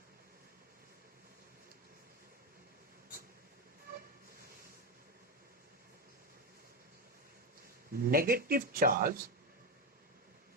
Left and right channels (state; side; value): normal; both; correlation 0.11